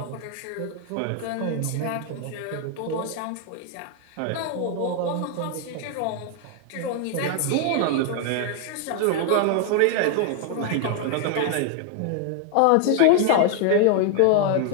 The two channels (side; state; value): both; different; correlation 0.00